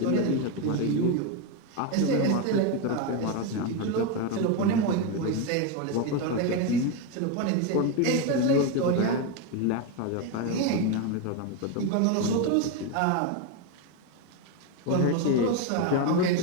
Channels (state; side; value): different; both; correlation 0.03